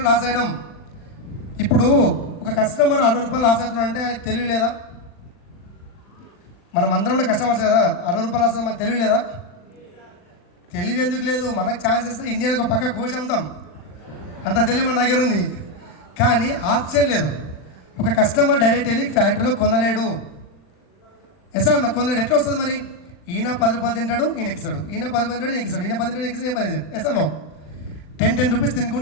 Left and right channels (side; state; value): right; late; 39 ms